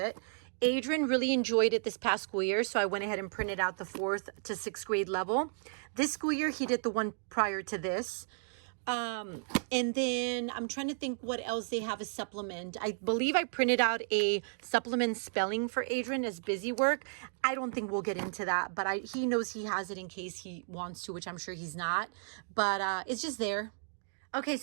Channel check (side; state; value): left; silent; digital silence